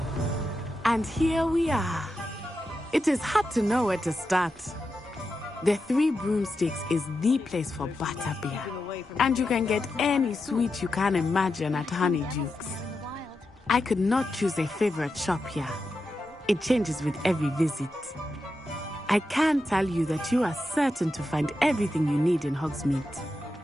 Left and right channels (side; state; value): both; normal; correlation 0.88